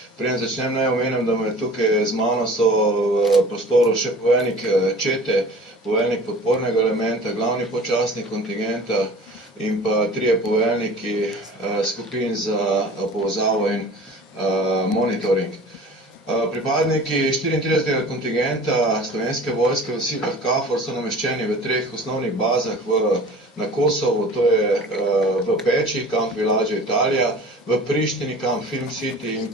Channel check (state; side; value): normal; both; correlation 0.42